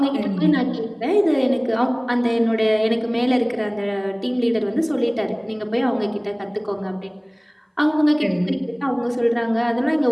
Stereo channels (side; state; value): both; identical; correlation 1.00